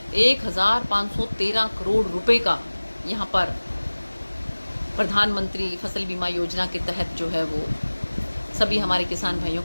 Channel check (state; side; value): inverted; both; correlation -1.00